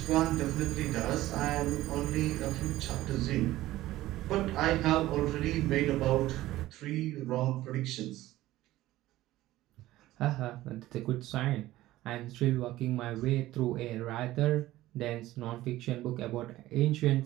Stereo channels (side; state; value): left; quieter; 16.0 dB